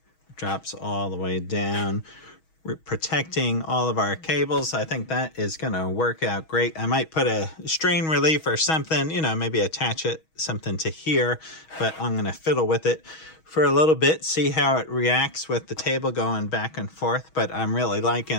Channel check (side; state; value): right; late; 6.3 ms